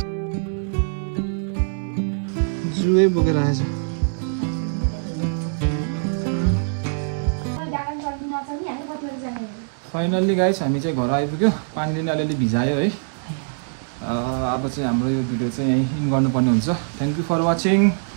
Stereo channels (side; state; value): left; silent; digital silence